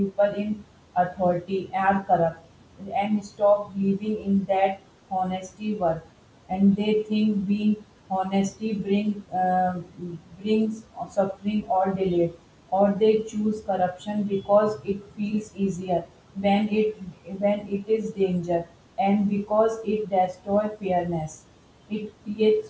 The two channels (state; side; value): identical; both; correlation 1.00